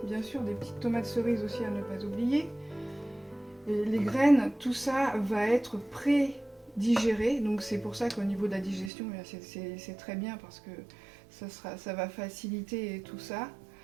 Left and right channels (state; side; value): drops out; left; at 8.9 s